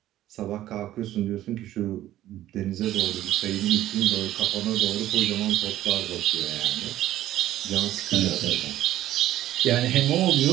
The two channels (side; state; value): left; quieter; 13.6 dB